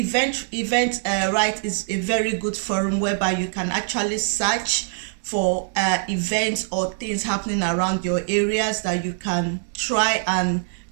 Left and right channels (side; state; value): left; silent; digital silence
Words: is a very good forum whereby you can actually search for events or things happening around your areas that you can try and